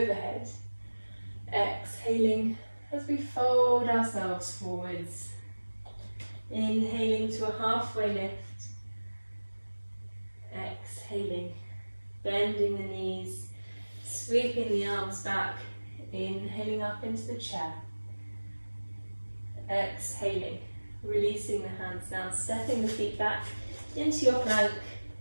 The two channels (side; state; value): both; inverted; correlation -1.00